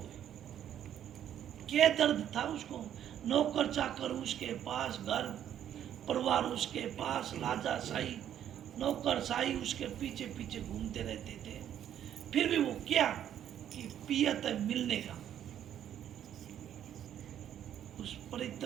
क्या दर्द था उसको? नौकर चाकर उसके पास, घर परिवार उसके पास, राजा शाही नौकर शाही उसके पीछे पीछे घूमते रहते थे, फिर भी वो क्या कि पियत मिलने का, उस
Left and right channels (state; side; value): quieter; left; 10.3 dB